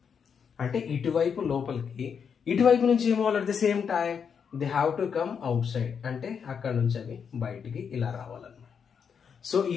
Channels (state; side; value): quieter; right; 6.8 dB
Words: అంటే ఇటువైపు లోపలికి, ఇటువైపు నుంచి ఏమో at the same time they have to come outside, అంటే అక్కడ నుంచి అవి బయటికి ఇలా రావాలన్నమాట. సో